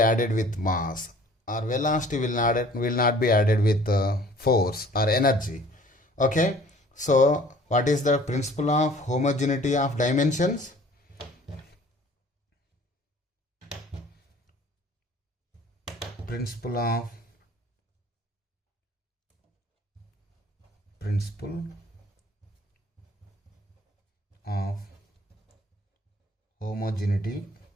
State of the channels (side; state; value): both; normal; correlation 0.52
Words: with mass, or velocity will not be added with force or energy. Okay, so what is the principle of homogeneity of dimensions? Principle of homogeneity